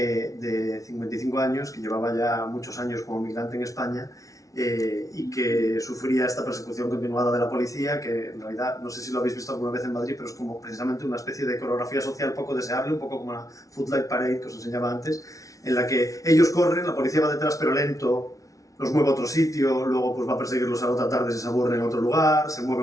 55 años, que llevaba ya muchos años como migrante en España, y que sufría esta persecución continuada de la policía, que en realidad, no sé si lo habéis visto alguna vez en Madrid, pero es como precisamente una especie de coreografía social poco deseable, un poco como la Footlight Parade que os enseñaba antes, en la que ellos corren, la policía va detrás pero lento, los mueve a otro sitio, luego pues va a perseguirlos a la otra tarde si se aburren en otro lugar, se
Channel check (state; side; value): late; right; 0.17 ms